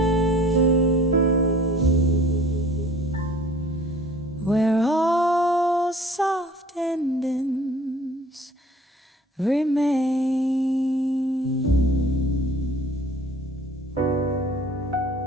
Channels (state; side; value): normal; both; correlation 0.49